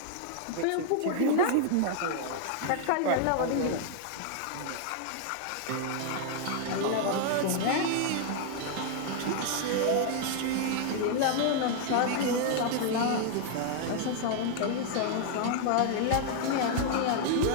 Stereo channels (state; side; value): different; both; correlation 0.00